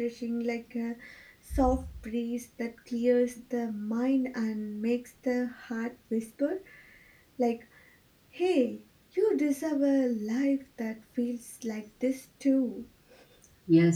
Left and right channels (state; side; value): identical; both; correlation 1.00